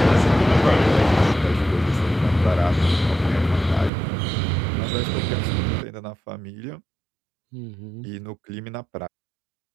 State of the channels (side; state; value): left; drops out; at 3.9 s